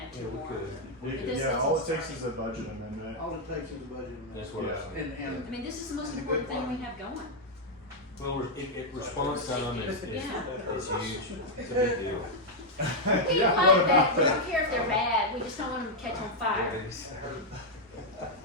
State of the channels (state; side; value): normal; both; correlation -0.02